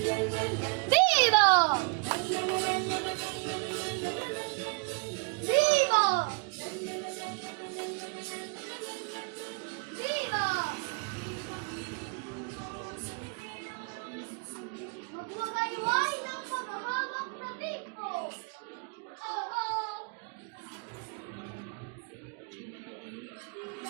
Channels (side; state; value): left; quieter; 34.1 dB